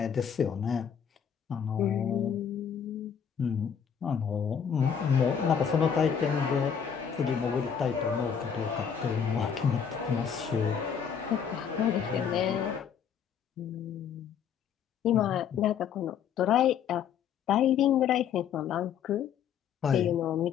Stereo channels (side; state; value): right; quieter; 7.7 dB